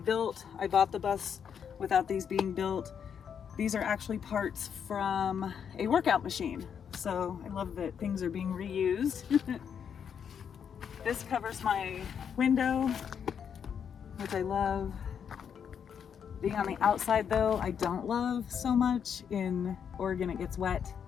I bought the bus without these being built. These are actually parts from a workout machine. So I love that things are being reused. This covers my window, which I love. Being on the outside though, I don't love so much. In Oregon it gets wet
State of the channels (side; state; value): right; quieter; 7.6 dB